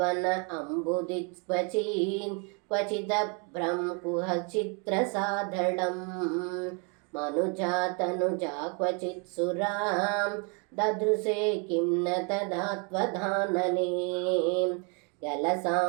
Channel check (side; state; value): left; quieter; 35.6 dB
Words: ಅಂಬುದಿಕ್ವಚೀನ್ ಕ್ವಚಿದಭ್ರಂ ಕುಹಚಿತ್ರಸಾಧಳಂ ಮನುಜಾತನುಜಾ ಕ್ವಚಿತ್ ಸುರಾಂ ದದೃಶೇ ಕಿಂ ನ ತದಾತ್ವಧಾನನೇ